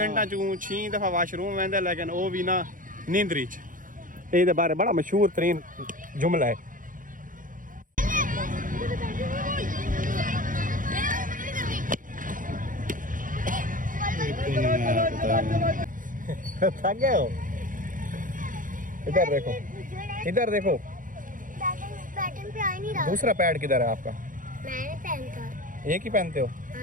चू 6 दफा वॉशरूम वेंदा लेकिन वो भी ना नींदरी च। ये बारे बड़ा मशहूर तरीन जुमला है। थक गए हो? इधर देखो बैटिंग पे आ ही नहीं रहा। दूसरा पैड किधर है आपका? मैंने पहनता। एक ही पहनते हो?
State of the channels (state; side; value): late; left; 0.39 ms